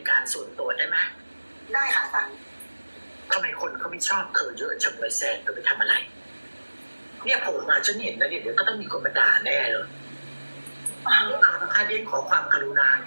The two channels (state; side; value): inverted; both; correlation -1.00